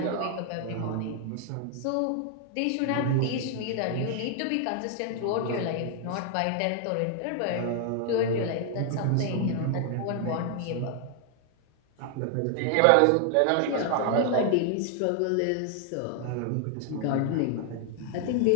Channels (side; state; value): both; different; correlation 0.00